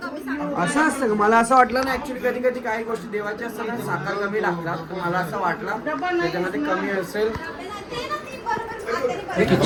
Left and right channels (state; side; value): identical; both; correlation 1.00